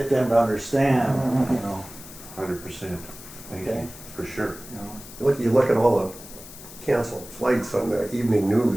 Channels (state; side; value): noise; left; hiss, 16 dB below the sound